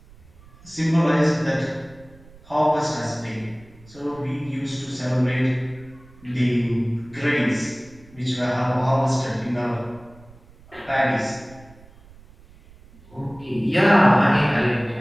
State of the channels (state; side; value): noise; right; rumble, 24 dB below the sound